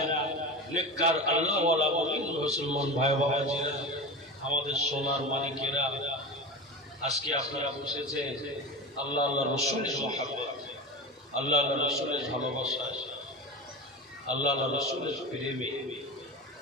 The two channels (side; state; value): both; normal; correlation 0.27